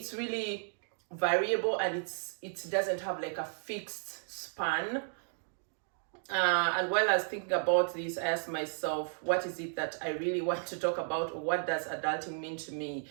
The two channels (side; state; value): left; silent; 55 dB below the other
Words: really variable, and it doesn't have like a fixed span. And while I was thinking about this, I asked myself, what is it that I really want to talk about, or what does adulting mean to me?